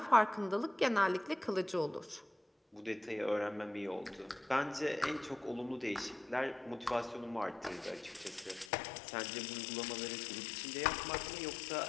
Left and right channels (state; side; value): drops out; right; at 8.7 s